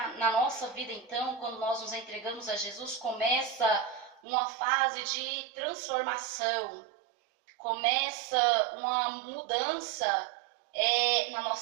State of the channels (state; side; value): drops out; left; at 4.2 s